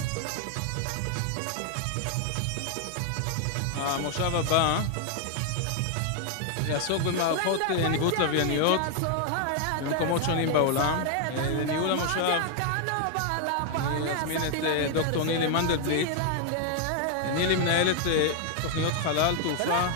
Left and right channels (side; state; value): both; different; correlation 0.00